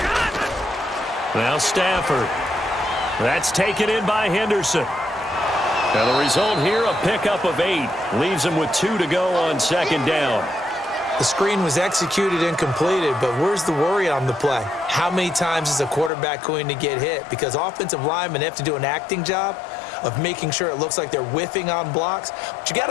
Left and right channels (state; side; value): drops out; right; at 16.1 s